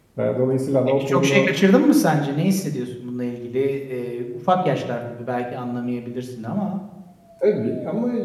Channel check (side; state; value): both; identical; correlation 1.00